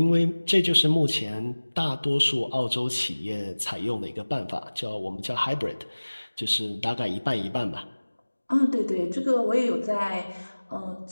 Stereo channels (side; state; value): both; inverted; correlation -1.00